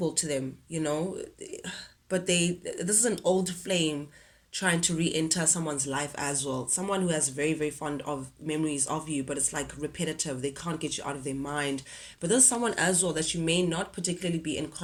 to them, but this is an old flame trying to re-enter someone's life as well, someone who has very very fond of memories of you, but it's like repetitive. They can't get you out of their mind. But there's someone as well that you may not particularly be in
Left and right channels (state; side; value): identical; both; correlation 1.00